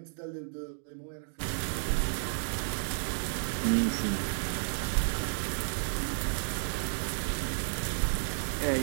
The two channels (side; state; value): left; silent; digital silence